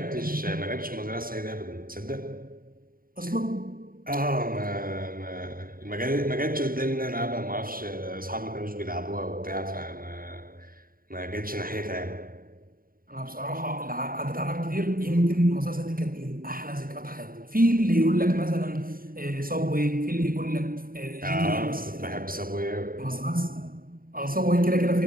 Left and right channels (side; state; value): left; late; 0.42 ms